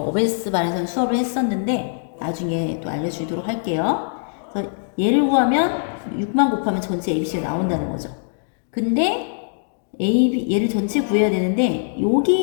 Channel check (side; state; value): right; silent; digital silence